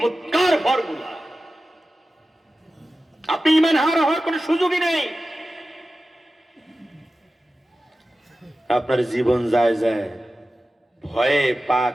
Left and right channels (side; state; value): both; normal; correlation 0.94